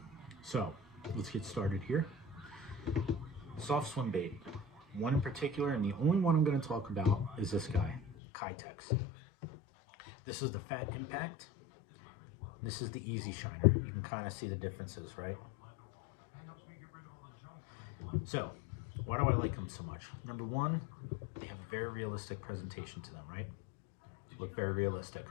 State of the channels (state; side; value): drops out; right; at 8.2 s